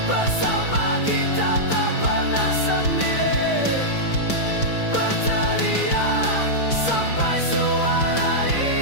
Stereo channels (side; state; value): right; late; 5.1 ms